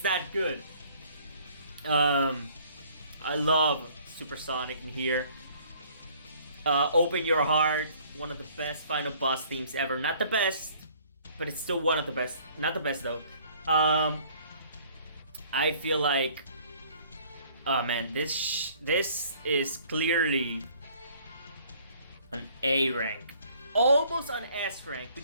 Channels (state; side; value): inverted; both; correlation -0.57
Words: that good. I love Supersonic in here. Open Your Heart, one of the best final boss themes ever. Not the best, but it's still one of the best. Not the best though. I feel like, oh man, this is clearly an A rank, almost an S rank,